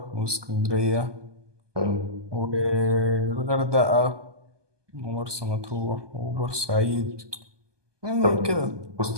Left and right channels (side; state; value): left; late; 1.2 ms